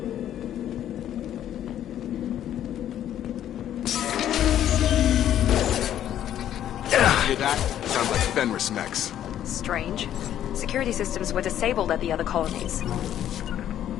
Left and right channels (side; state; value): right; quieter; 11.0 dB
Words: Hear that? Sounds like Fenris mechs. Strange. Security systems were disabled at the other colonies.